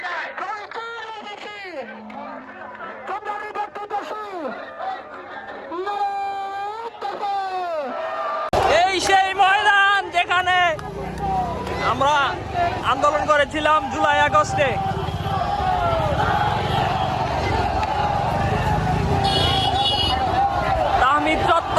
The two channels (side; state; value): both; identical; correlation 1.00